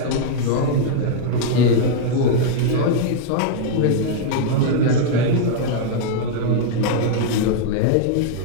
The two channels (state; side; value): different; both; correlation -0.01